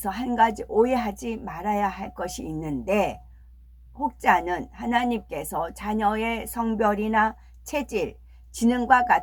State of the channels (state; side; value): identical; both; correlation 1.00